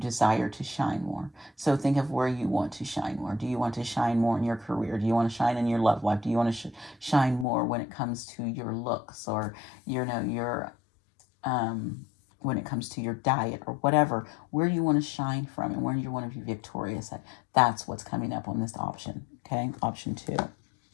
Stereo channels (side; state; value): right; drops out; at 7.5 s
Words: to shine more. So think of where you want to shine more. Do you want to shine more in your career? Do you want to shine in your love life? Do you want to shine more when it comes to your looks, or your when it comes to your diet, or whatever, where you want to shine from and where you want to be victorious at? That's what's coming up on this option. Okay, option 2.